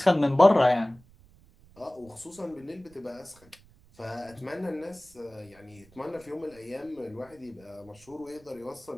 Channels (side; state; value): right; noise; rumble, 27 dB below the sound